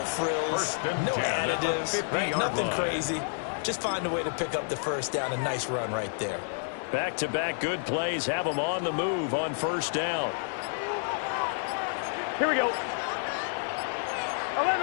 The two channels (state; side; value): silent; right; digital silence